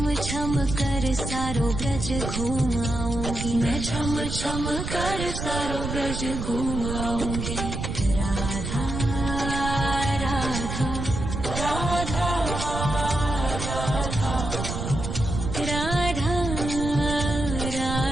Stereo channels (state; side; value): noise; right; rumble, 4 dB below the sound